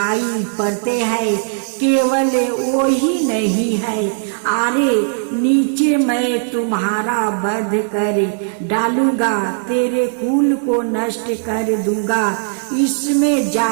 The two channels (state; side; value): silent; left; 68 dB below the other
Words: पड़ते हैं, केवल वो ही नहीं है। अरे नीचे मैं तुम्हारा वध कर डालूंगा, तेरे कुल को नष्ट कर दूंगा, इसमें